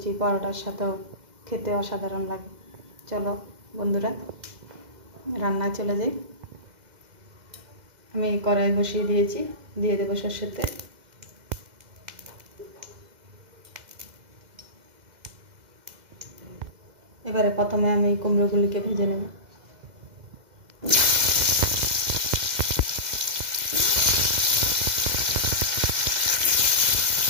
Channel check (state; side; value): late; left; 2.0 ms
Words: পরোটার সাথেও খেতে অসাধারণ লাগে। চলো বন্ধুরা রান্নায় চলে যাই। আমি কড়াই বসিয়ে দিয়েছি, দিয়ে দেবো সরষের তেল। এবারে প্রথমে আমি কুমড়োগুলিকে ভেজে নেব।